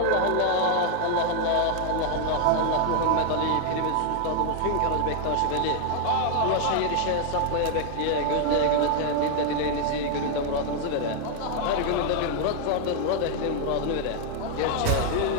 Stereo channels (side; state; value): both; different; correlation 0.00